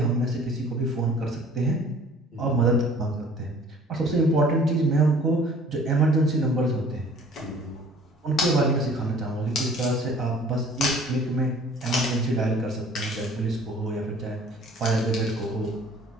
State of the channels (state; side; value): normal; both; correlation 0.51